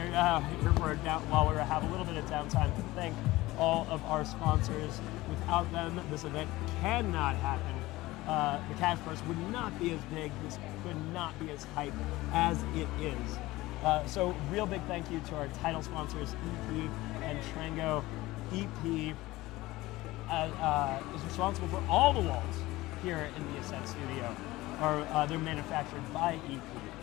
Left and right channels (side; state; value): right; quieter; 18.7 dB